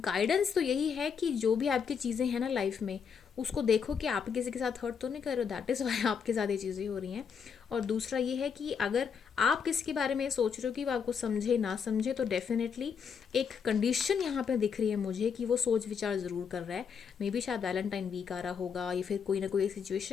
तो यही है कि जो भी आपकी चीज़ें हैं ना लाइफ में, उसको देखो कि आप किसी के साथ हर्ट तो नहीं कर रहे हो, दैट इज़ वाई आपके साथ ये चीज़ें हो रही हैं। और दूसरा ये है कि अगर आप किसी के बारे में सोच रहे हो कि वो आपको समझे ना समझे, तो डेफिनेटली एक कंडीशन यहाँ पे दिख रही है मुझे कि वो सोच विचार ज़रूर कर रहा है। मे बी शायद वैलेंटाइन वीक आ रहा होगा या फिर कोई ना कोई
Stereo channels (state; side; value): quieter; right; 6.6 dB